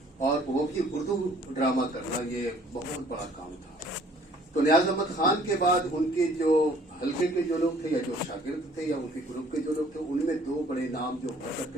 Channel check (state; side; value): normal; both; correlation 0.57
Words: और वो भी उर्दू ड्रामा करना ये बहुत बड़ा काम था। तो नियाज अहमद खान के बाद उनके जो हल्के के जो लोग थे या जो शागिर्द थे या उनके ग्रुप के जो लोग थे उनमें दो बड़े नाम जो हुआ